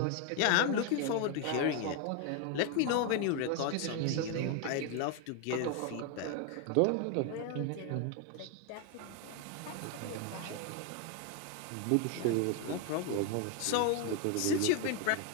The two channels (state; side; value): different; both; correlation 0.01